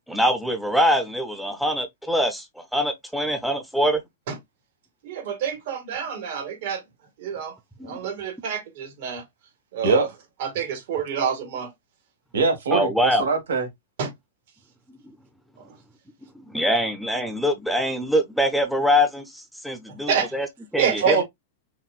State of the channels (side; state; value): both; normal; correlation 0.28